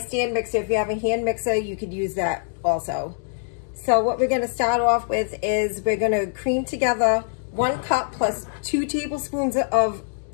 mixer. If you have a hand mixer you could use that also. So what we're going to start off with is we're going to cream together 1 cup plus 2 tablespoons of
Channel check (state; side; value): silent; right; digital silence